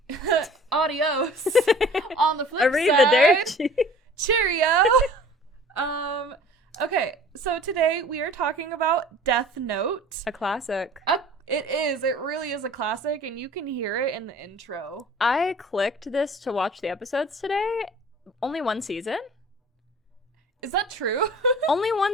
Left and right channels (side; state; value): both; normal; correlation 0.46